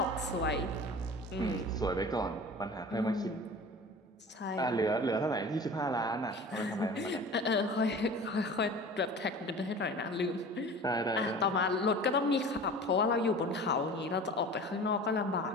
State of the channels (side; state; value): both; normal; correlation 0.39